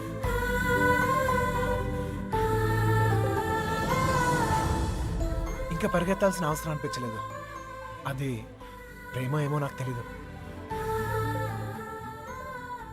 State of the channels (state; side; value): identical; both; correlation 1.00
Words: ఇంకా పరిగెత్తాల్సిన అవసరం అనిపించలేదు. అది ప్రేమ ఏమో నాకు తెలీదు.